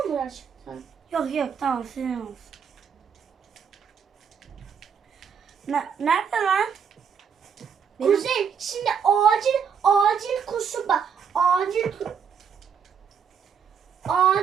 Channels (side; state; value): left; quieter; 7.0 dB